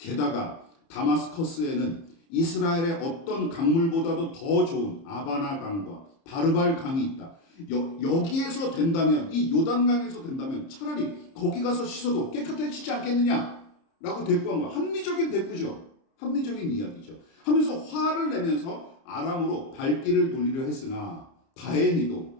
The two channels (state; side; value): late; right; 30 ms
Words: 다마스커스에는 이스라엘의 어떤 강물보다도 더 좋은 아바나 강과 바르발 강이 있다. 여기에서 된다면, 이 요단강에서 된다면 차라리 거기 가서 씻어도 깨끗해지지 않겠느냐 라고 대꾸한 거야. 합리적인 대꾸죠. 합리적인 이야기죠. 하면서 화를 내면서 아람으로 발길을 돌리려 했으나 다행히도